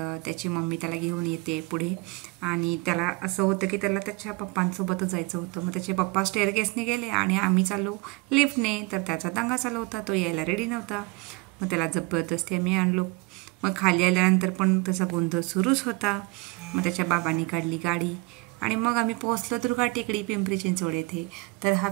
त्याची मम्मी त्याला घेऊन येते पुढे आणि त्याला असं होतं की त्याला त्याच्या पप्पांसोबतच जायचं होतं. मग त्याचे पप्पा स्टेअरकेसने गेले आणि आम्ही चालू लिफ्टने. तर त्याचा दंगा चालू होता, तो यायला रेडी नव्हता. मग त्याला जबरदस्ती आम्ही आणलो. मग खाली आल्यानंतर पण त्याचा गोंधळ सुरूच होता. मग त्याच्या बाबांनी काढली गाडी आणि मग आम्ही पोहोचलो दुर्गा टेकडी, पिंपरी चिंचवड येथे. तर हा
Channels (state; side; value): quieter; left; 25.8 dB